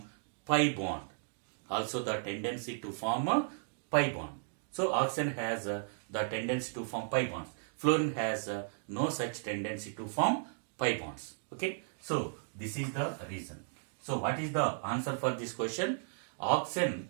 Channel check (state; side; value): silent; left; digital silence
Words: pi bond. So oxygen has the tendency to form pi bonds. Fluorine has no such tendency to form pi bonds. Okay. So this is the reason. So what is the answer for this question? Oxygen